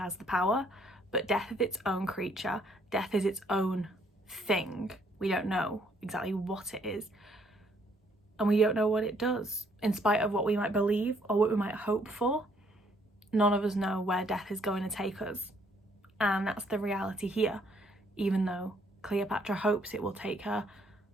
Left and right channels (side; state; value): both; normal; correlation 0.67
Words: the power, but death is its own creature, death is its own thing. We don't know exactly what it is, and we don't know what it does. In spite of what we might believe or what we might hope for, none of us know where death is going to take us, and that's the reality here, even though Cleopatra hopes it will take her